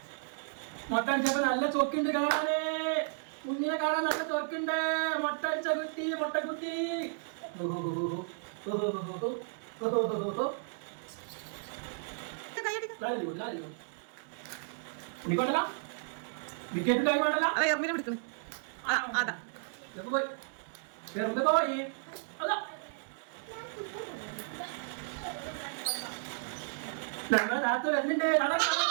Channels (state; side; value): silent; left; 55 dB below the other